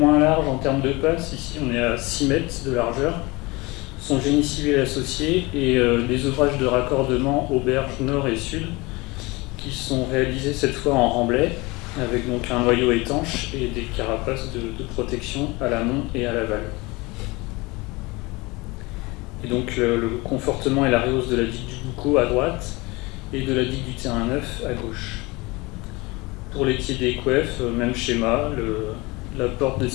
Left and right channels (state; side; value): quieter; right; 23.9 dB